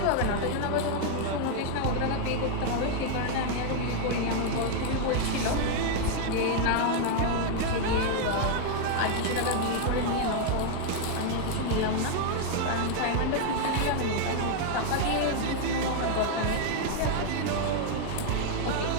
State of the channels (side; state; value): both; different; correlation 0.00